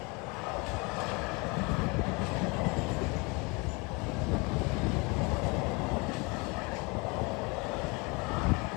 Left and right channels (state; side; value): quieter; right; 28.3 dB